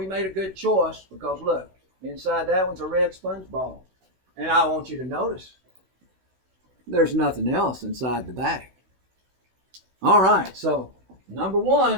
made a good choice because look, inside that one's a red sponge ball. And I want you to notice there's nothing else inside the bag. All right, so number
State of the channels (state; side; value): late; left; 16 ms